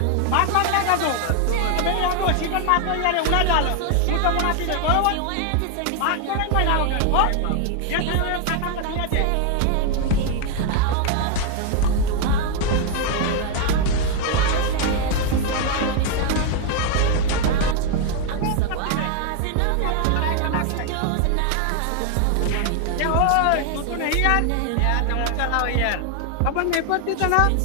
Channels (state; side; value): different; both; correlation 0.00